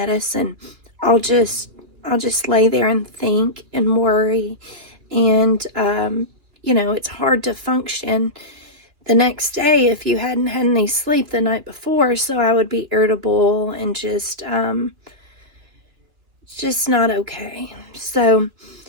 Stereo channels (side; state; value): left; late; 2.9 ms